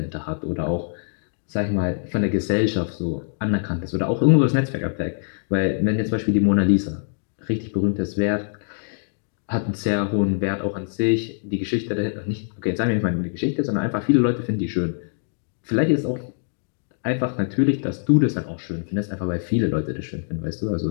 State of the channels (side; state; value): right; silent; digital silence